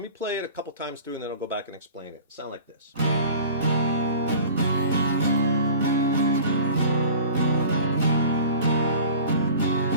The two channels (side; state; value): both; inverted; correlation -0.42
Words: me play it a couple times through and then I'll go back and explain it. Sound like this.